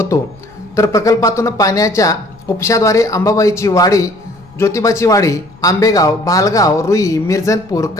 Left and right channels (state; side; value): noise; left; rumble, 26 dB below the sound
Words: तर प्रकल्पातून पाण्याच्या उपशाद्वारे अंबाबाईची वाडी, ज्योतिबाची वाडी, आंबेगाव, भालगाव, रुई, मिरजनपूर,